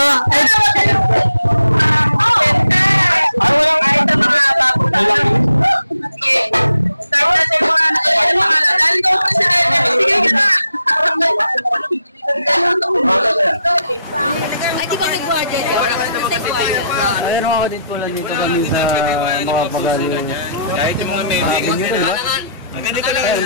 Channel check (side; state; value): both; inverted; correlation -0.77